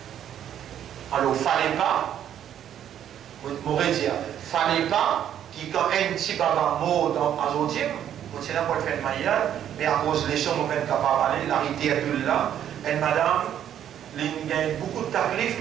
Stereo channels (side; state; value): left; quieter; 10.2 dB